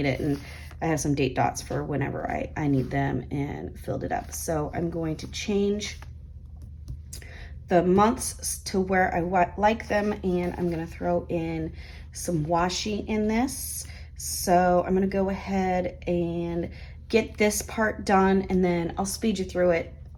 it, and I have some date dots for whenever I need them, and filled it up. So I'm going to change the months to where I like them, and I'm gonna throw in some washi in this. So I'm gonna go ahead and get this part done, and then I'll speed you through it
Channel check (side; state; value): both; identical; correlation 1.00